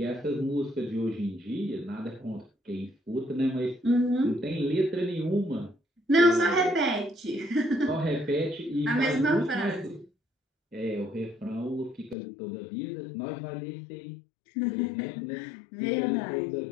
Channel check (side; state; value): right; drops out; at 12.2 s